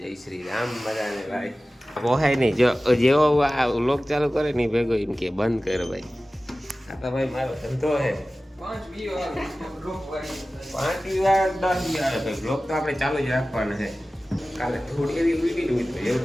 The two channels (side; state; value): both; normal; correlation 0.96